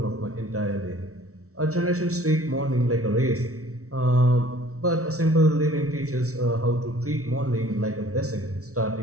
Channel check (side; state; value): left; late; 0.64 ms